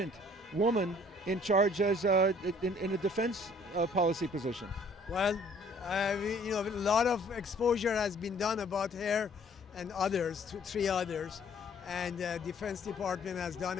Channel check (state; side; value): normal; both; correlation 0.57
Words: woman in charge as in a defense policy position? Well, a lot of exposure has been done about her and others, three others, and Defense Department has done